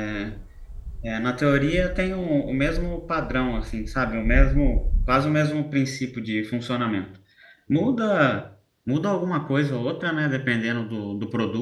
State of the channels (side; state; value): both; identical; correlation 1.00